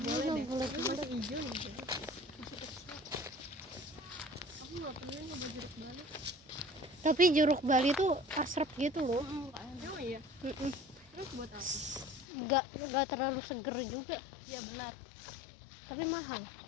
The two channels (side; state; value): right; drops out; at 12.2 s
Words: deh. Boleh. Itu masih hijau nih. Aku nggak pernah nyoba jeruk Bali. Tapi jeruk Bali tuh asrep gitu loh. Oh iya. Mm-mm. Terus buat apa? Nggak terlalu seger juga. Iya benar. Tapi mahal.